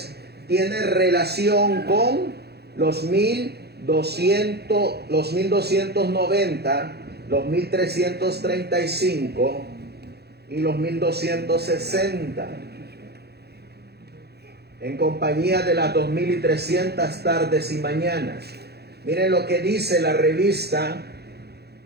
tiene relación con los 1290, los 1335 y los 1260. En compañía de las 2300 tardes y mañanas. Miren lo que dice la revista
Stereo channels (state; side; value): late; left; 0.47 ms